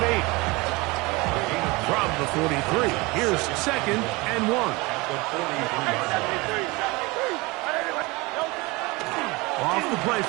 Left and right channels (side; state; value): left; quieter; 24.2 dB